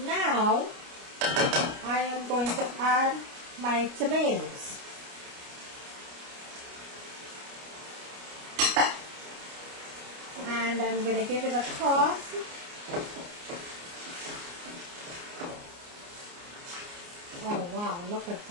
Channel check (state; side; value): late; left; 29 ms